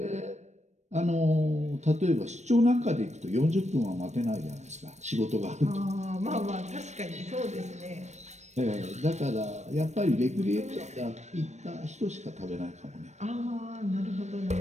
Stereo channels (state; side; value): late; left; 0.34 ms